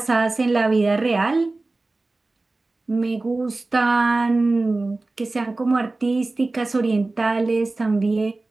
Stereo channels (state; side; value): quieter; left; 3.2 dB